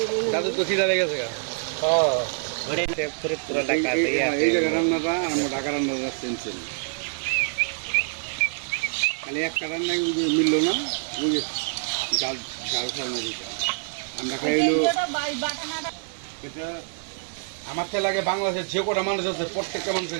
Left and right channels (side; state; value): left; silent; digital silence